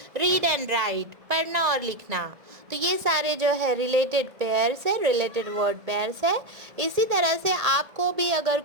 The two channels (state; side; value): late; left; 1.7 ms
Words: रीड एंड राइट, पढ़ना और लिखना. तो ये सारे जो है रिलेटेड पेयर्स है, रिलेटेड वर्ड पेयर्स है. इसी तरह से आपको भी अगर